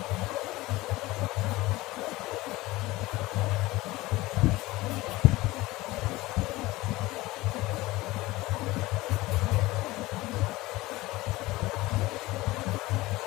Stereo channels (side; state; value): right; quieter; 19.5 dB